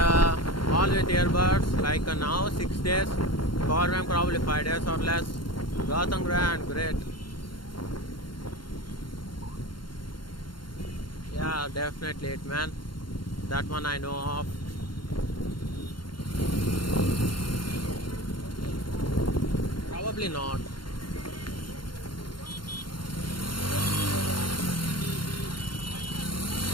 all with earbuds. Like now 6 days, power bank probably 5 days or less. Gotham Grand, great. Yeah, definitely it, man. That one I know of. Probably not.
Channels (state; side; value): late; right; 0.72 ms